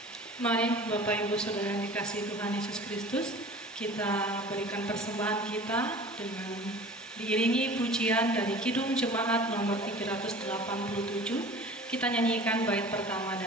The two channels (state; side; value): normal; both; correlation 0.42